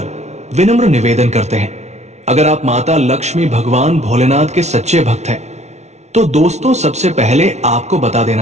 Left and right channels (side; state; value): left; late; 0.32 ms